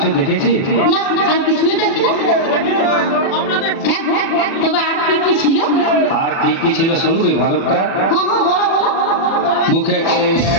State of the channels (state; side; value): late; right; 37 ms